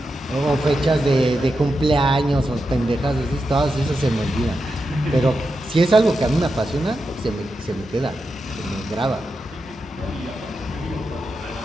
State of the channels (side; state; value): both; normal; correlation 0.88